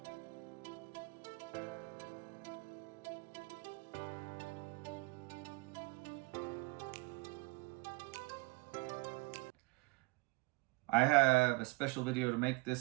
I have a special video to make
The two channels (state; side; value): quieter; left; 26.7 dB